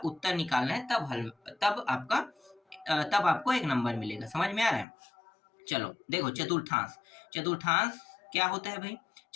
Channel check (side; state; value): right; drops out; at 4.9 s